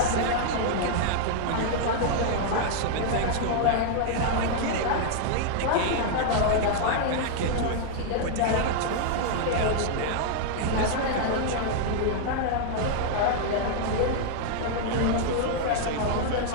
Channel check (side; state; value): both; different; correlation 0.00